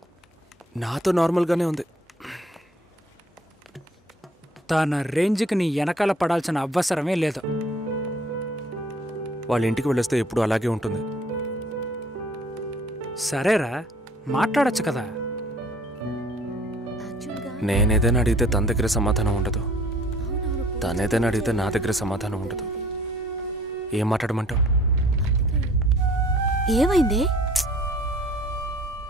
నాతో నార్మల్గానే ఉంది. తన రేంజ్కి నీ వెనకాల పడాల్సిన అవసరమే లేదు. వాళ్ళ ఇంటికి వెళ్ళొస్తే ఎప్పుడు అలాగే ఉంటుంది. సరేరా, మాట్లాడచ్చు కదా. నేనేదైనా అడిగితే తన దగ్గర సమాధానం ఉండదు, తనేదైనా అడిగితే నా దగ్గర సమాధానం ఉండదు. ఏం మాట్లాడమంటావు? ఏమైంది?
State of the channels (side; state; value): both; normal; correlation 0.55